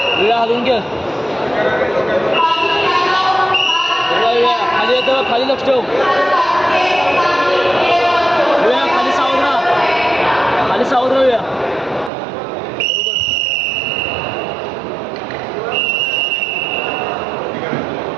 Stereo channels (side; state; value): left; drops out; at 12.1 s